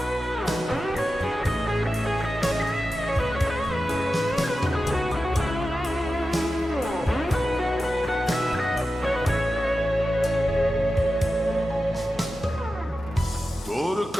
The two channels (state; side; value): normal; both; correlation 0.92